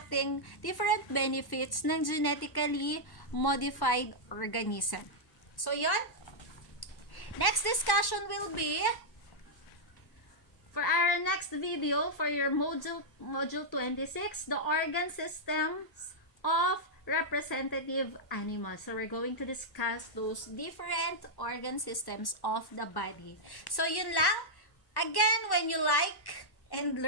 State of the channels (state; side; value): late; right; 1.1 ms